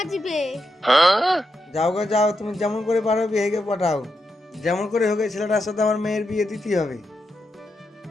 যাও গো যাও, তুমি যেমন করে পারো বিহাইকে পাঠাও। যেমন করে হোক এই ছেলেটার সাথে আমার মেয়ের বিয়ে দিতেই হবে।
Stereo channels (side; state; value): both; normal; correlation 0.85